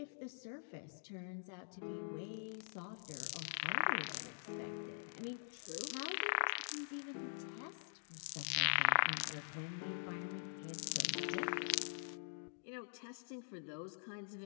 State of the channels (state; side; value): silent; right; digital silence